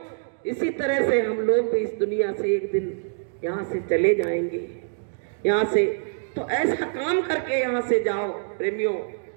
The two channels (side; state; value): left; silent; digital silence